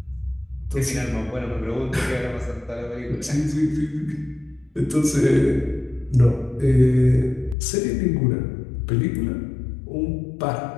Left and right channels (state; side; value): drops out; right; at 7.6 s